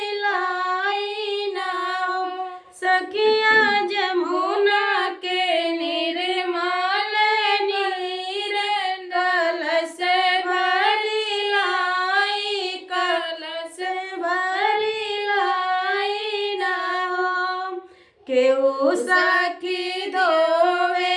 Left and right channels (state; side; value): identical; both; correlation 1.00